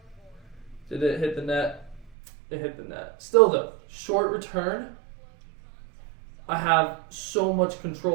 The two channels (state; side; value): drops out; left; at 2.1 s